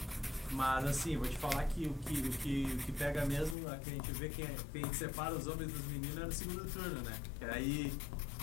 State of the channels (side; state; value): right; drops out; at 3.6 s